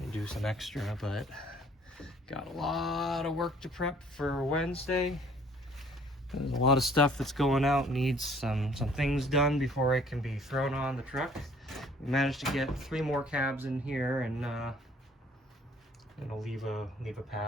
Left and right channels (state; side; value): normal; both; correlation 0.57